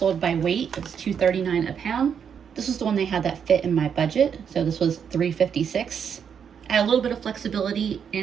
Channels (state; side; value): quieter; left; 7.5 dB